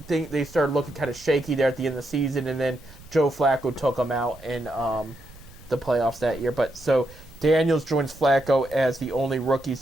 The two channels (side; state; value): right; noise; rumble, 21 dB below the sound